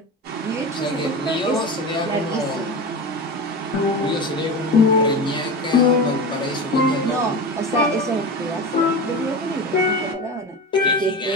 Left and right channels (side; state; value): both; normal; correlation 0.26